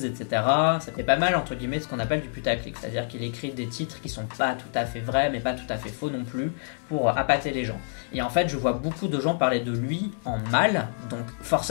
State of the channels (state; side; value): silent; right; digital silence